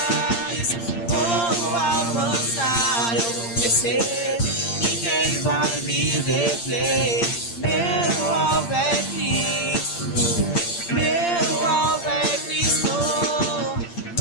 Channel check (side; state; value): right; late; 8.7 ms